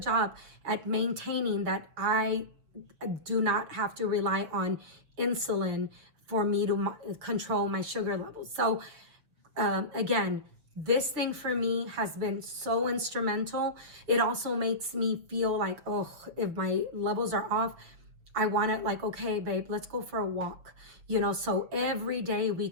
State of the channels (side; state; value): left; late; 6.6 ms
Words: job at maintaining that I do not have to rely on insulin for me to control my sugar levels. So again, This thing for me has been so instrumental. It also makes me feel like, oh, if my levels are off, I want to like, okay, babe, let's go for a walk. You know, so every day we